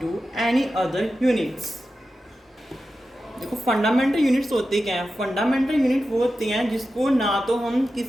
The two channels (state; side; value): normal; both; correlation 0.92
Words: any other units। देखो फंडामेंटल यूनिट्स होते क्या हैं। फंडामेंटल यूनिट वो होते हैं जिसको ना तो हम